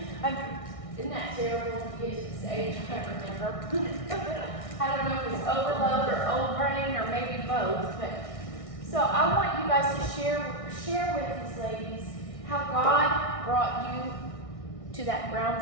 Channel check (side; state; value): right; late; 1.6 ms